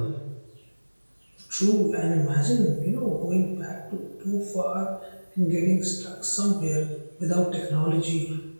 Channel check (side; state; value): both; inverted; correlation -1.00